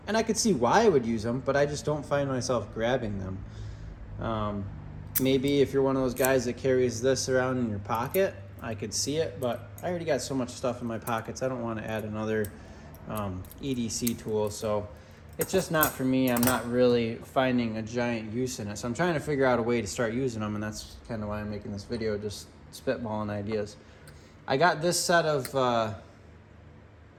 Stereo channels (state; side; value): identical; both; correlation 1.00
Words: and I could see why I would use them, but I just don't find myself grabbing them. Maybe if you're one of those guys that carries this around in your pocket, I could see it, but I already got so much stuff in my pockets. I don't want to add another EDC tool, so it's just not for me. I'm not really finding a giant use in it, so I'm trying to figure out a way to start using them, and that's kind of why I'm making this video, just spitballing ideas. I got this set of